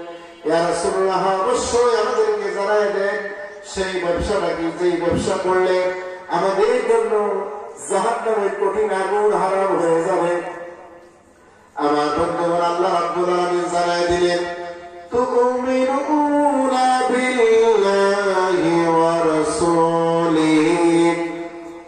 ইয়া রাসূলুল্লাহ, অবশ্যই আমাদেরকে জানায় দেন সেই ব্যবসাটা কি, যেই ব্যবসা করলে আমাদের জন্য জাহান্নামের কঠিন আগুন হারাম হয়ে যাবে। আমার বন্ধুগণ, আল্লাহ রাব্বুল আলামিন জানায় দিলেন, তুমিনুনা বিল্লাহি ওয়া রাসূলিহি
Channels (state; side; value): identical; both; correlation 1.00